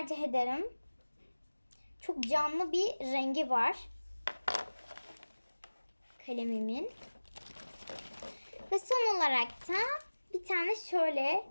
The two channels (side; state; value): both; inverted; correlation -1.00